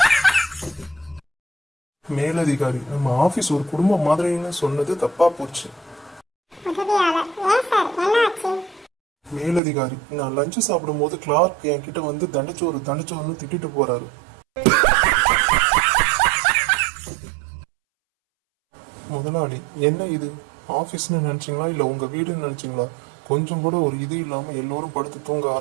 மேலதிகாரி நம்ம ஆபீஸ் ஒரு குடும்பம் மாதிரின்னு சொன்னது தப்பா போச்சு. உதவியாளர் ஏன் சார் என்ன ஆச்சு? மேலதிகாரி, நான் லஞ்ச் சாப்பிடும் போது கிளார்க் என்கிட்ட வந்து தண்டச்சோறுன்னு திட்டிட்டு போறாரு. முதலாளி, என்ன இது? ஆபீஸ்னு நினைச்சீங்களா இல்ல உங்க வீடுன்னு நினைச்சீங்களா? கொஞ்சம் கூட ஒரு இது இல்லாம எல்லோரும் படுத்து தூங்க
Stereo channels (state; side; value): drops out; left; at 9.6 s